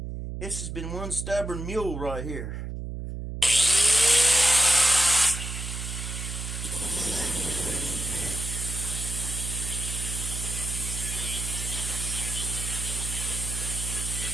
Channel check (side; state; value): right; noise; hum, 6 dB below the sound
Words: This has been one stubborn mule right here.